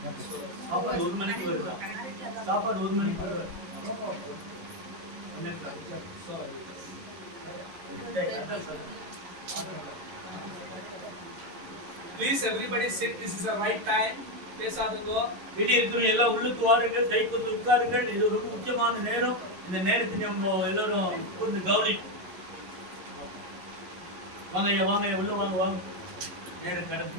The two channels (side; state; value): left; late; 11 ms